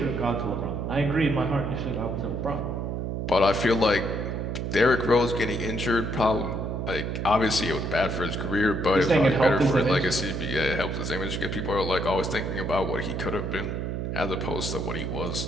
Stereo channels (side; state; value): right; noise; hum, 3 dB below the sound